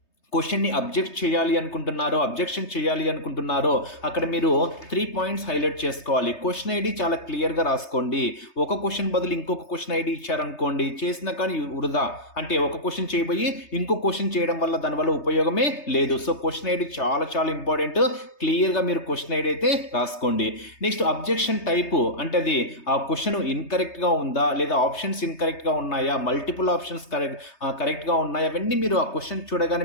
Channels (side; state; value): right; late; 3.3 ms